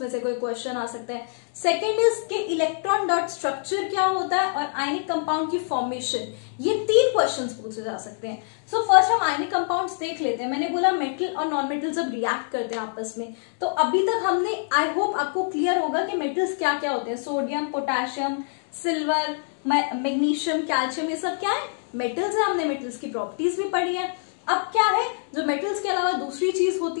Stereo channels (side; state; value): right; silent; digital silence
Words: से कोई क्वेश्चन आ सकता है। सेकंड इज कि इलेक्ट्रॉन डॉट स्ट्रक्चर क्या होता है और आयनिक कंपाउंड की फॉर्मेशन, ये तीन क्वेश्चंस पूछे जा सकते हैं। सो फर्स्ट हम आयनिक कंपाउंड्स देख लेते हैं। मैंने बोला मेटल और नॉन मेटल जब रिएक्ट करते हैं आपस में, तो अभी तक हमने, आई होप आपको क्लियर होगा कि मेटल्स क्या क्या होते हैं। Sodium, potassium, silver, magnesium, calcium, ये सब क्या है, मेटल्स है। हमने मेटल्स की प्रॉपर्टीज भी पढ़ी है। अब क्या है, जो मेटल्स के अलावा दूसरी चीज होती